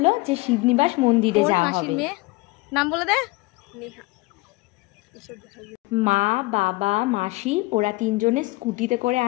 যে শিবনিবাস মন্দিরে যাওয়া হবে। নাম বলে দে। মা, বাবা, মাসি ওরা তিনজনে স্কুটিতে করে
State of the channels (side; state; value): right; quieter; 23.0 dB